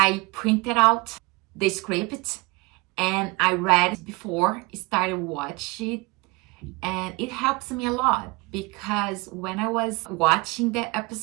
printed out the script and I read it before I started watching. And it helps me a lot, because when I was watching the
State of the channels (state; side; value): quieter; left; 25.3 dB